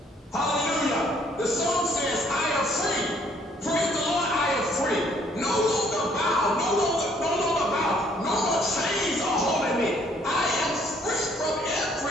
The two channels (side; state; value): both; normal; correlation 0.64